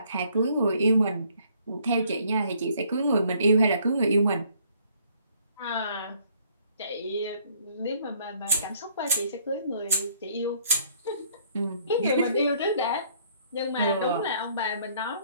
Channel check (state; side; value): inverted; both; correlation -0.63